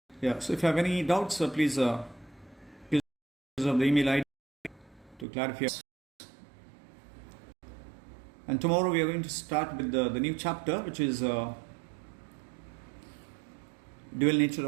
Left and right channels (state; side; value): drops out; left; at 5.2 s